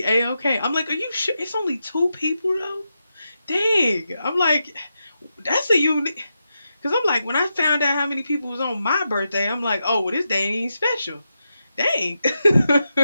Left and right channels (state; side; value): inverted; both; correlation -0.87